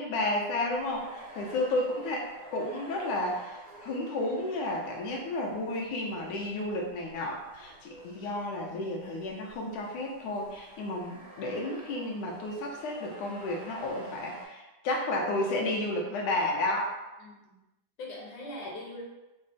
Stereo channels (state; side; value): late; right; 10 ms